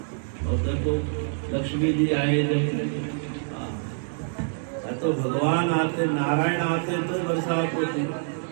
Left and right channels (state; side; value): silent; left; digital silence